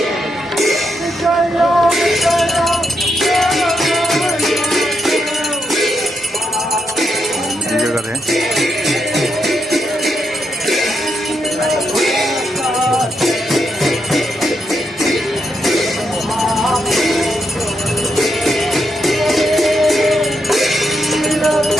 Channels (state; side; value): normal; both; correlation 0.82